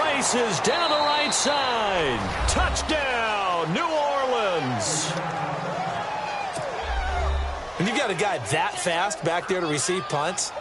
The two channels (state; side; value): identical; both; correlation 1.00